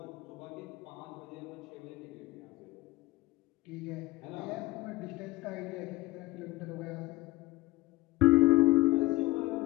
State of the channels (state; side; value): quieter; right; 19.4 dB